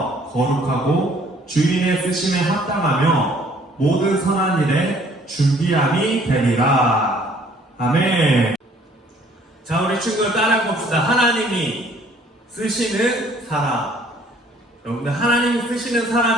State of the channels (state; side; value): normal; both; correlation 0.59